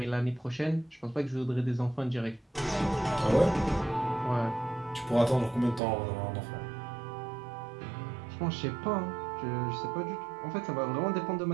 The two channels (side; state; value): left; drops out; at 5.8 s